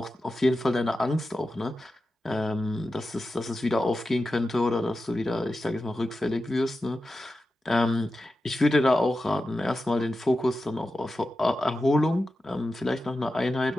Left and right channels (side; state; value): both; normal; correlation 0.92